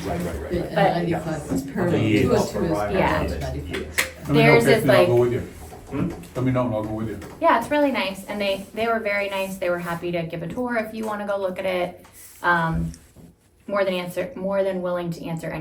And But- 95 is parallel. Yeah. 202 is Yeah. parallel to 95. Let me know Theirs if is me, I'll like- go with you. Hmm? Let me know and I'll go with you. Yeah, it's really nice, and they were very nice. They were happy to give a tour if you want to go look at it. More than willing to answer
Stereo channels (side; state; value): both; identical; correlation 1.00